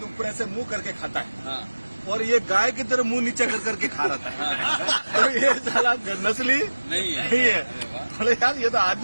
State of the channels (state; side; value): inverted; both; correlation -1.00